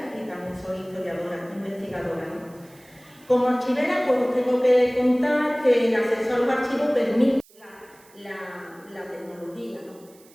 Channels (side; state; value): right; noise; hiss, 27 dB below the sound